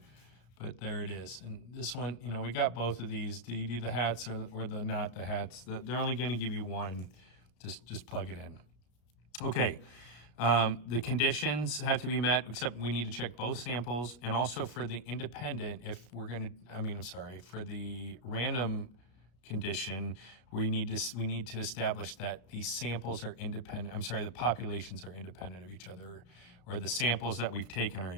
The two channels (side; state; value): right; late; 33 ms